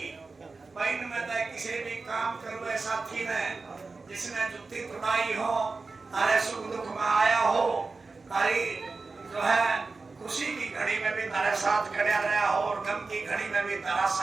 भाई में किसी भी काम करो ऐसा थी ने जिसने जुत्ती तुड़ाई हो, तारे सुख दुख में आया हो, तारी जो है खुशी की घड़ी में भी तारे साथ खड़ा रहा हो और गम की घड़ी में भी तारा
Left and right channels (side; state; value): left; quieter; 4.0 dB